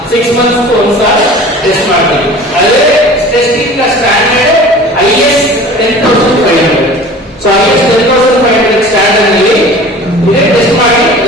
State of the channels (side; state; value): both; normal; correlation 0.42